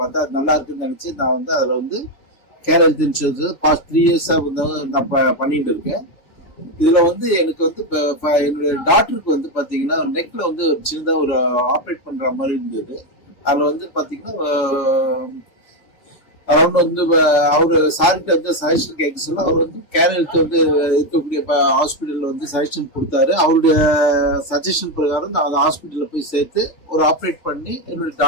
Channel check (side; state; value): right; late; 3.5 ms